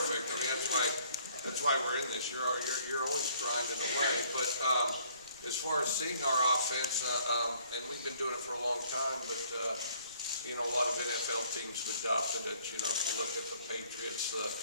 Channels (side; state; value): both; inverted; correlation -0.61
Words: I mean, that's that's why we're in this. You're always grinding away. But as far as seeing our offense, and we've been doing it for a long time, but you know, a lot of NFL teams have adopted it. You know, if you look at the Patriots, the